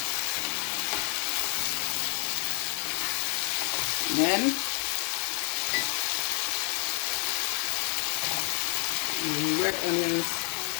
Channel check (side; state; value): right; quieter; 38.8 dB